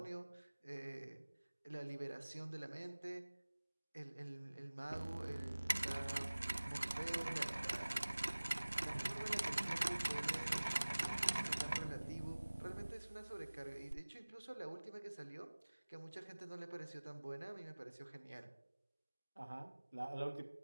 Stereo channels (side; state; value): both; inverted; correlation -1.00